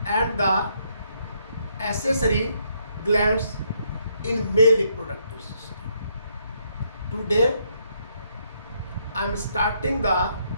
and the accessory glands in male reproductive system. Today I am starting the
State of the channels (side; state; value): both; inverted; correlation -0.73